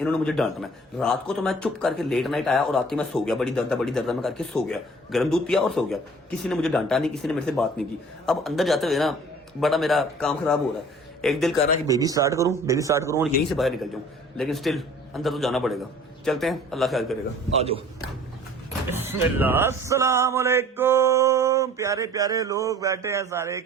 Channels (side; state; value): both; normal; correlation 0.49